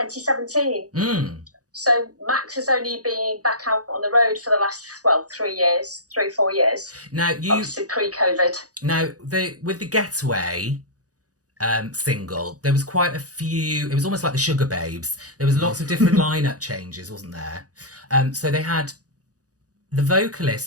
So Maxx has only been back out on the road for the last, 3-4 years. Now obviously pre-COVID. Now with the Getaway single, there was quite a few. It was almost like the Sugar Babes. There was lots of different lineup changes, wasn't there? So they had the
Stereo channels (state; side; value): late; left; 0.67 ms